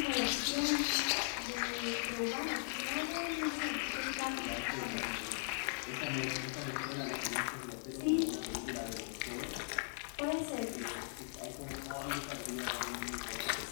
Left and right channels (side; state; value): right; silent; 52 dB below the other